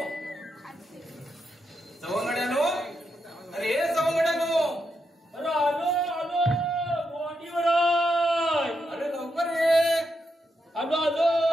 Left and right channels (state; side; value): normal; both; correlation 0.83